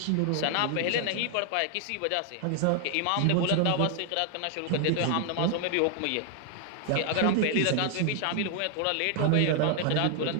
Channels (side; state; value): both; different; correlation 0.00